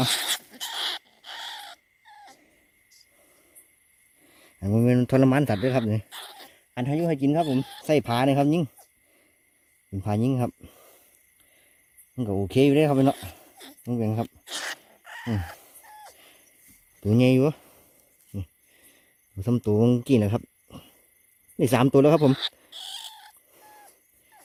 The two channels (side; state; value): both; identical; correlation 1.00